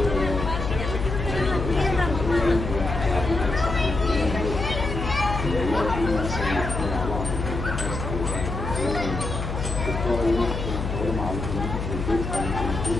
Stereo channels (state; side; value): noise; left; hum, 4 dB below the sound